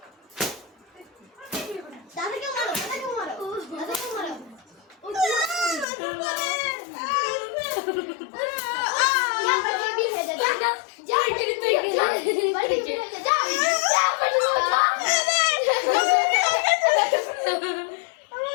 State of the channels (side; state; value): right; drops out; at 5.9 s